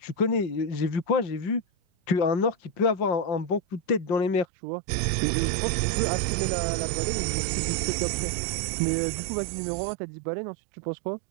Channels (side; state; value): left; drops out; at 4.5 s